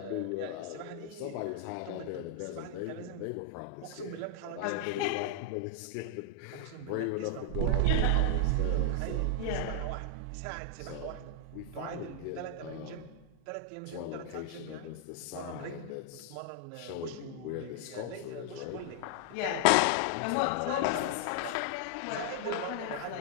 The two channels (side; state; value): both; different; correlation 0.00